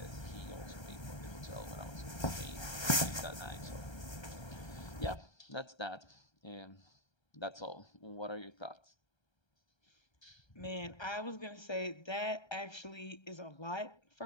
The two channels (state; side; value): late; right; 1.3 ms